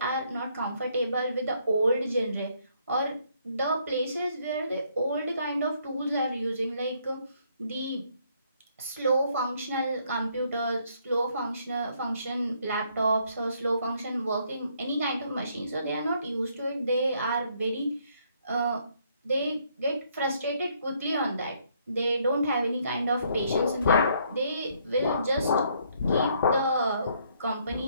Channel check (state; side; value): inverted; both; correlation -0.69